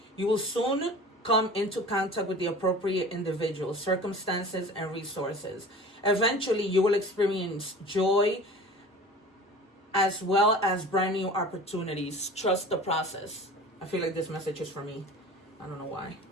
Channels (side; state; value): both; normal; correlation 0.40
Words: You will soon come into contact with the appropriate individuals, circumstances, and resources. Eventually, you will experience joy as well as brand new opportunities. Trust the process. I feel like this message is for me. I don't know why.